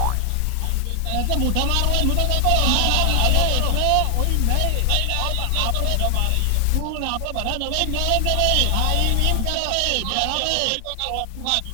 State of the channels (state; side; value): different; both; correlation 0.00